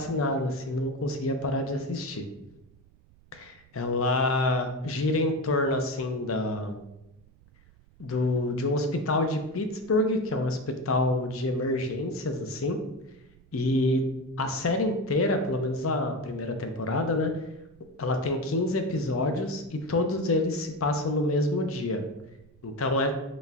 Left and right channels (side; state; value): right; noise; rumble, 27 dB below the sound